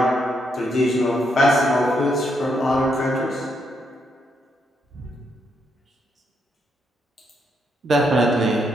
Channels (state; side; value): normal; both; correlation 0.78